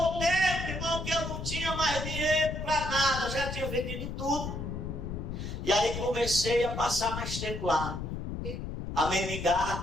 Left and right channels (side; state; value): left; noise; rumble, 5 dB below the sound